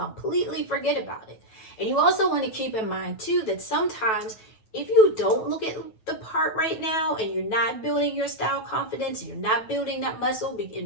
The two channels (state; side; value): late; right; 9.2 ms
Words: forget about it. And you also want to keep in mind too that sometimes if you don't look at the part right now, and you're not building your style confidence, you're not building that muscle